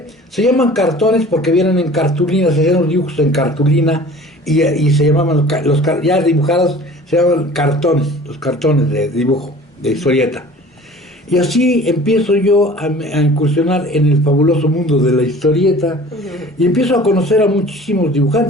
se llaman cartones porque vienen en cartulina, se hacían los dibujos en cartulina y se llamaban ya dibujados, se llaman cartones, los cartones de dibujo, de historieta. Y así empiezo yo a incursionar en el fabuloso mundo de la historieta y empiezo a conocer a muchísimos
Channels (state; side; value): normal; both; correlation 0.45